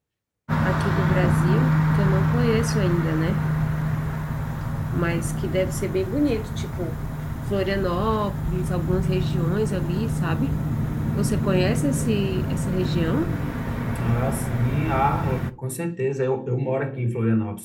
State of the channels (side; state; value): both; identical; correlation 1.00